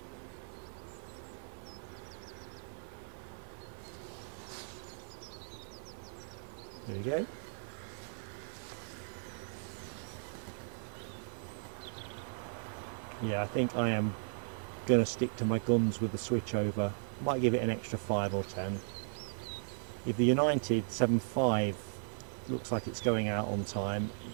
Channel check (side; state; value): left; silent; digital silence